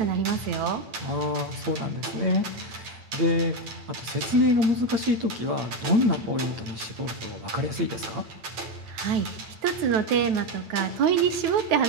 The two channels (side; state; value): left; late; 9.1 ms